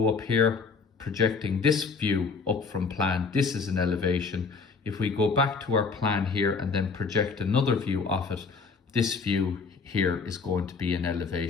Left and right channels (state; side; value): quieter; right; 4.9 dB